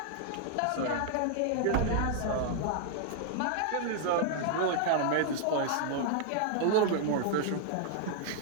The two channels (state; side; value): different; both; correlation 0.00